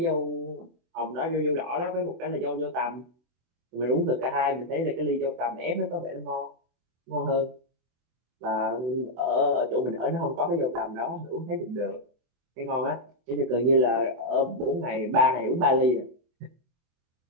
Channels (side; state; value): left; late; 24 ms